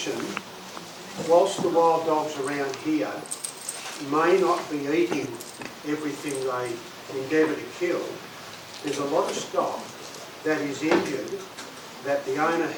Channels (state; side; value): identical; both; correlation 1.00